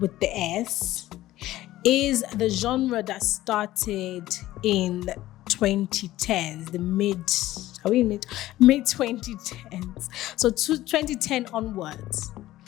the S is the genre that started in 2010s, the mid 2010s. So 2010 onwards,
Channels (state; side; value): quieter; right; 15.5 dB